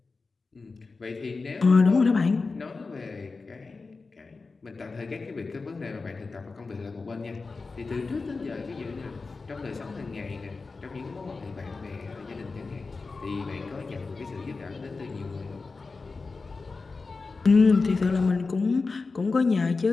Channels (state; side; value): quieter; right; 4.1 dB